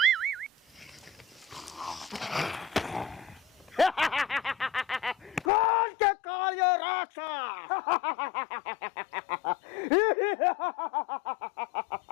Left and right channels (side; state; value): right; drops out; at 5.5 s